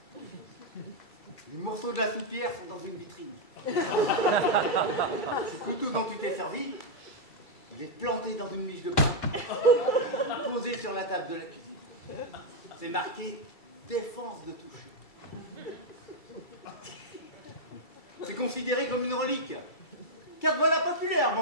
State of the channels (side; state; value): right; late; 2.3 ms